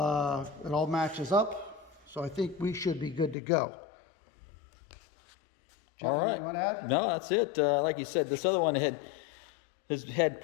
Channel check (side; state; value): right; drops out; at 3.4 s